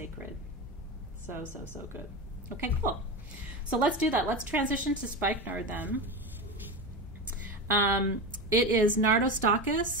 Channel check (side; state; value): both; normal; correlation 0.20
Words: So good. Okay, cool. So let's do that. Let's transition to spikenard then. It is